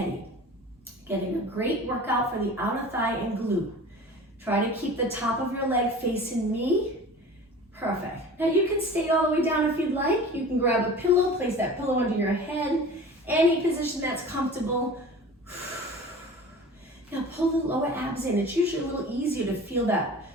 Getting a great workout for the outer thigh and glute. Try to keep the top of your leg facing me. Perfect. Now, you can stay all the way down if you'd like. You can grab a pillow, place that pillow under your head. Any position that's comfortable. Now pull the lower abs in. It's usually a little easier to feel that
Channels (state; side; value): normal; both; correlation 0.39